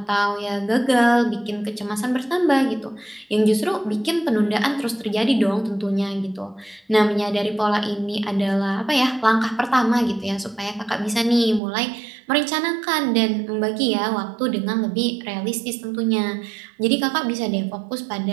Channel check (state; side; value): drops out; left; at 11.6 s